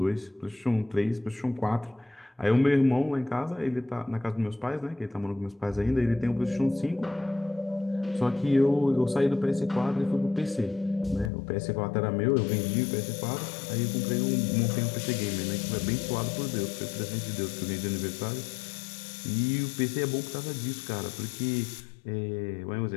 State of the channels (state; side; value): drops out; right; at 11.3 s